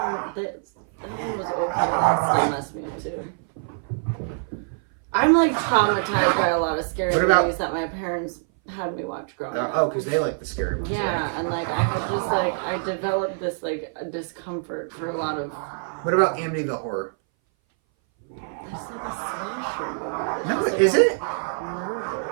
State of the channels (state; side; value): silent; left; 59 dB below the other